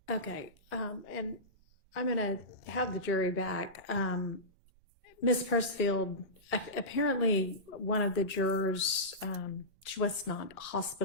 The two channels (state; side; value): normal; both; correlation -0.18